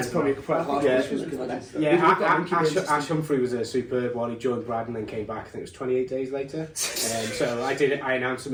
probably quite hard. Ash Humphrey was a superb one. He joined Brad and then came back. I think it was 28 days later. So I announced him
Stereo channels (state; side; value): identical; both; correlation 1.00